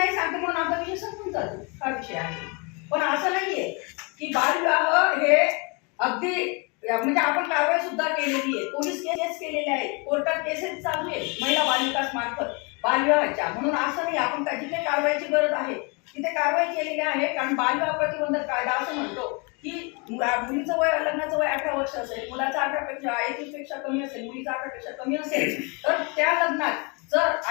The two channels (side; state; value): right; quieter; 31.6 dB